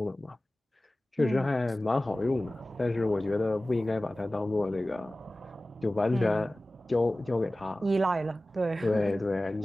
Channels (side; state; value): both; normal; correlation 0.97